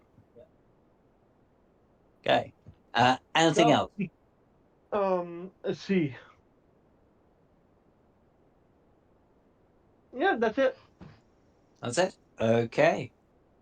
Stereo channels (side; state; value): both; identical; correlation 1.00